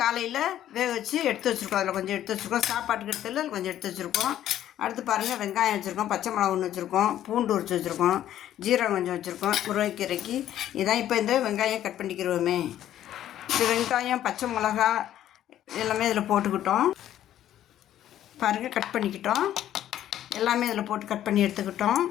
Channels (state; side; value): quieter; right; 11.8 dB